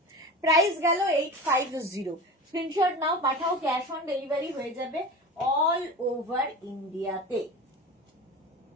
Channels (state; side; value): normal; both; correlation 0.31